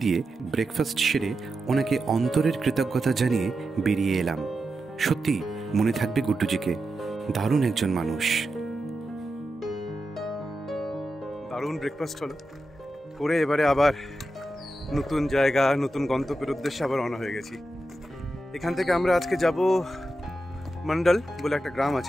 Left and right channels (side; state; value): both; normal; correlation 0.89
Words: দিয়ে ব্রেকফাস্ট সেরে ওনাকে অন্তরের কৃতজ্ঞতা জানিয়ে বেরিয়ে এলাম। সত্যি মনে থাকবে গুড্ডুজিকে, দারুণ একজন মানুষ। দারুণ ব্রেকফাস্ট হলো করে এবারে আবার নতুন জায়গা নতুন গন্তব্যের উদ্দেশ্যে আবার রওনা হয়ে গেছি। এখান থেকে আমরা আজকে যাব মন্ডল বলে একটা গ্রাম